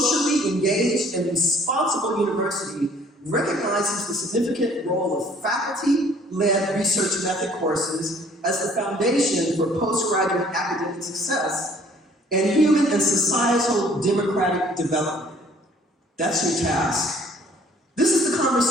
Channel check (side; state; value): both; normal; correlation 0.57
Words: engaged, and responsible university recognizes the significant role of faculty-led research method courses as the foundation for postgraduate academic success and human and societal democratic development. That's your task. This is the